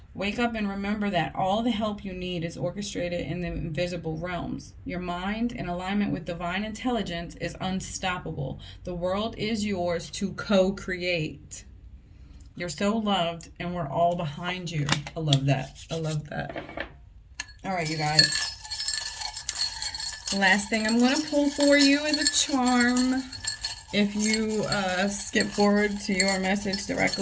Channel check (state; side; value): identical; both; correlation 1.00